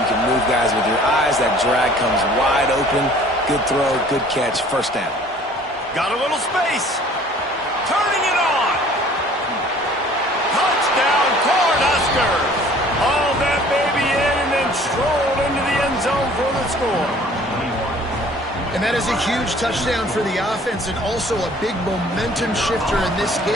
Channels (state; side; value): normal; both; correlation 0.52